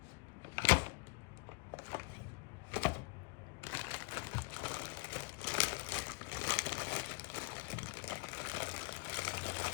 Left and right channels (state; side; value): quieter; right; 27.6 dB